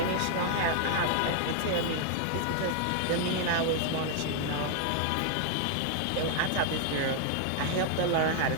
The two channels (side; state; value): both; different; correlation 0.00